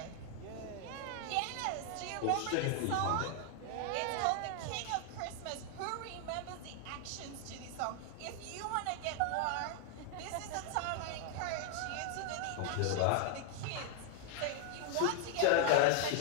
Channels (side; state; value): both; different; correlation 0.00